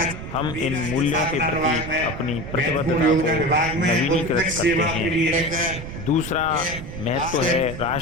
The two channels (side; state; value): right; noise; rumble, 9 dB below the sound